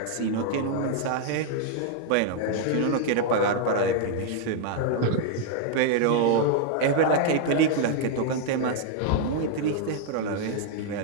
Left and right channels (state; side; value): different; both; correlation 0.00